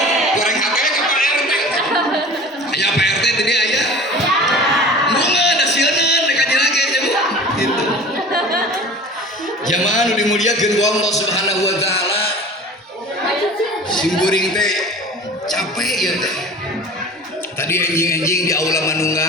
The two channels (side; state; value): both; normal; correlation 0.40